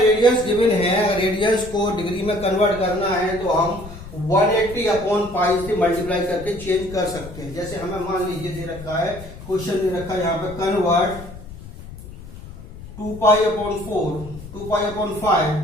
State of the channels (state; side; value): noise; left; rumble, 15 dB below the sound